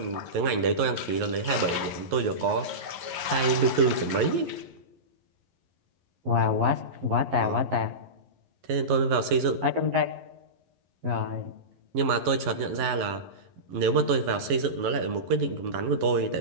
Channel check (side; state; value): left; late; 11 ms